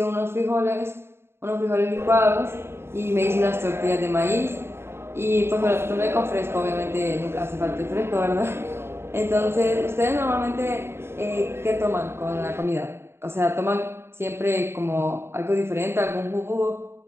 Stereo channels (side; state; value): left; late; 0.12 ms